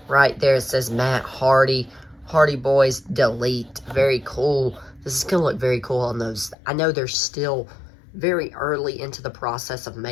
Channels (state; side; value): drops out; right; at 6.6 s